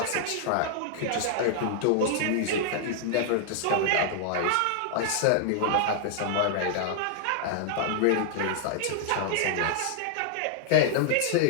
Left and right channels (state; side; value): different; both; correlation 0.00